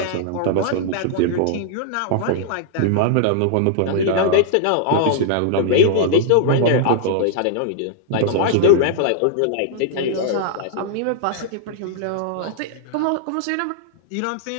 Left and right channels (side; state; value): both; different; correlation -0.01